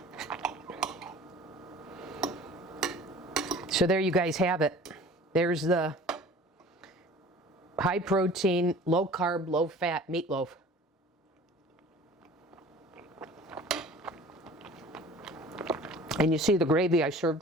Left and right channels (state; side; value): normal; both; correlation 0.45